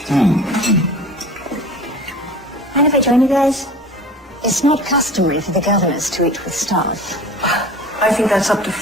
Mind if I join you guys? It's not customary for the governors to eat with staff. I think that's up to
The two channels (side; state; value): both; normal; correlation 0.40